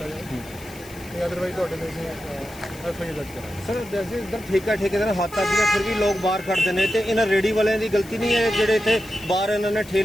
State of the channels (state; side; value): noise; left; hiss, 19 dB below the sound